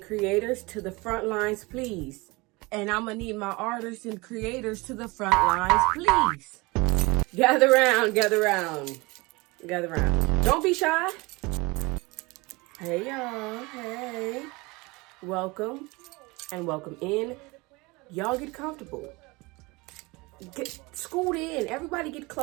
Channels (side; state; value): left; quieter; 24.4 dB